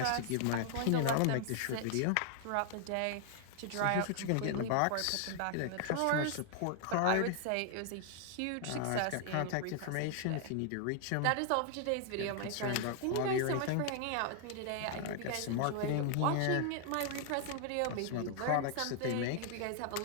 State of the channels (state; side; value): different; both; correlation 0.00